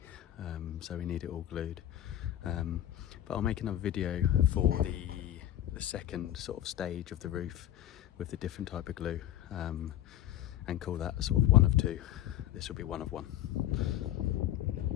so we need it all glued. But I'll make another video for the second sort of stage of the roof with the different type of glue, and call that sort of one of two. This will be one of one.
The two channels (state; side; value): quieter; right; 12.4 dB